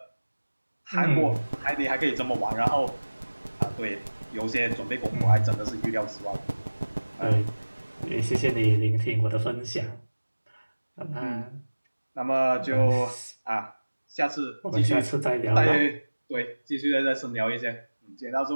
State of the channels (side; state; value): both; inverted; correlation -1.00